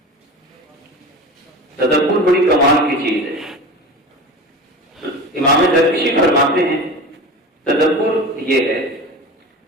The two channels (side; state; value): both; normal; correlation 0.32